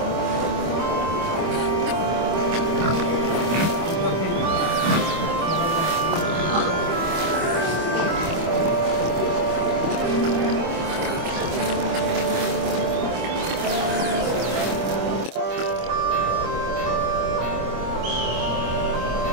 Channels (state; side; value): late; left; 25 ms